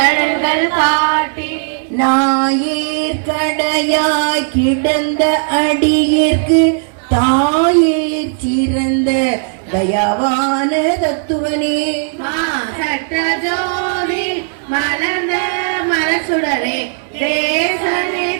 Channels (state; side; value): silent; left; digital silence